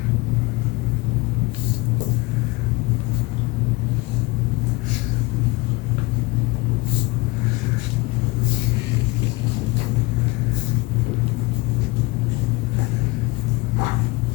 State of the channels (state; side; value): quieter; right; 23.5 dB